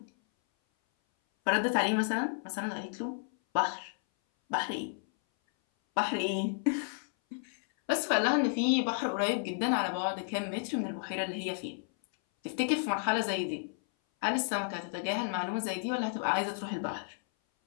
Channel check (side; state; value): right; silent; 56 dB below the other